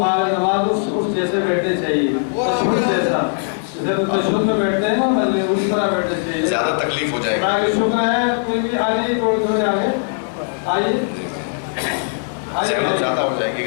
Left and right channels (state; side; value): silent; right; digital silence